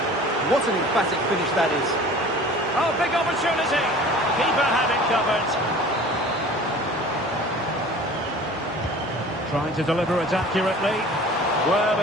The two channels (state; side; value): normal; both; correlation 0.44